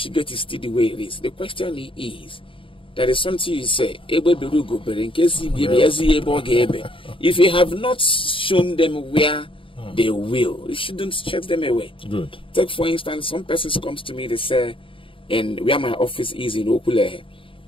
is still the way it is? The question is, there is something you say, if you have not shown them where they will, you shouldn't chase them away. Good. Take for instance, some persons comes to me, they say, and where my office is in Okule,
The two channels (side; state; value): right; late; 0.25 ms